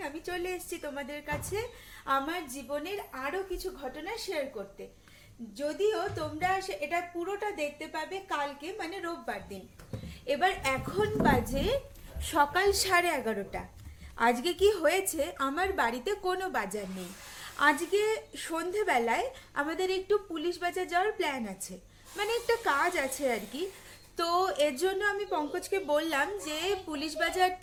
আমি চলে এসেছি তোমাদের কাছে আমার জীবনের আরও কিছু ঘটনা শেয়ার করতে। যদিও তোমরা এটা পুরোটা দেখতে পাবে কালকে, মানে রোববার দিন। এবার এখন বাজে সকাল 11:30। আজকে কি হয়েছে, আমার বাড়িতে কোনো বাজার নেই। আজকে সন্ধেবেলায় আমাদের একটু পুলিশ বাজার যাওয়ার প্ল্যান আছে, মানে একটা কাজ আছে আর কি। তো এর জন্য আমি পঙ্কজকে বললাম যে পুলিশ বাজার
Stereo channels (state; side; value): identical; both; correlation 1.00